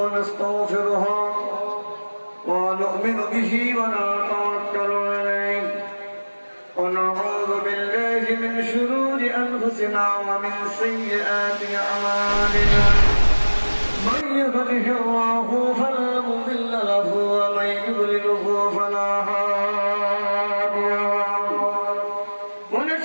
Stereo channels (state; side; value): inverted; both; correlation -1.00